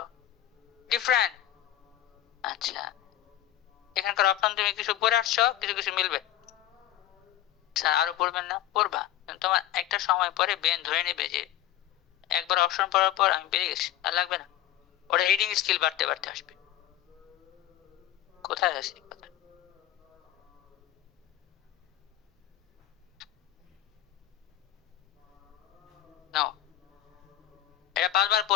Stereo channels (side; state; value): right; quieter; 12.9 dB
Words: ডিফারেন্ট, আচ্ছা এখানকার অপশন তুমি কিছু পড়ে আসছো, কিছু কিছু মিলবে। স্যার আরো পড়বেন না? পড়বা, তোমার একটা সময় পরে ব্রেন ধরে নেবে যে একবার অপশন পড়ার পর আমি পেরে গেছি, আর লাগবে না। ওটা রিডিং স্কিল বাড়তে বাড়তে আসবে। কোথায় আছে কথা? নাও এটা 5বার